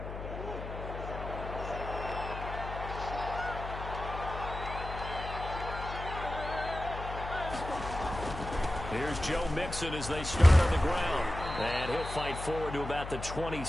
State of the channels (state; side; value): noise; left; hum, 8 dB below the sound